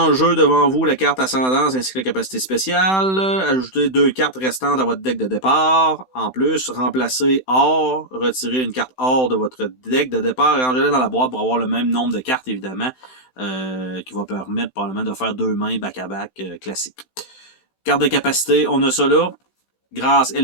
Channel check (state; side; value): late; right; 16 ms